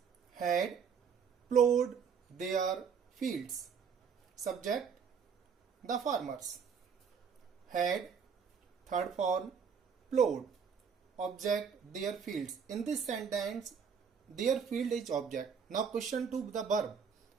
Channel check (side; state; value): left; quieter; 6.5 dB